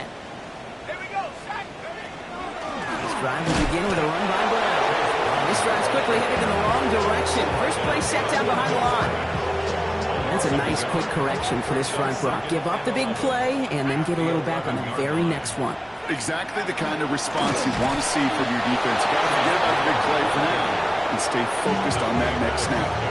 we go, Shaq. This drive will begin with a run by Brown. This drive's quickly headed in the wrong direction. First play set down behind the line. That's a nice quick correction for this front, Brock. Give up the big play and then get a little back on the very next one. Exactly the kind of response you want to see from your defense. You got to forget about the big play for now and stay focused on that next snap.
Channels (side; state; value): both; identical; correlation 1.00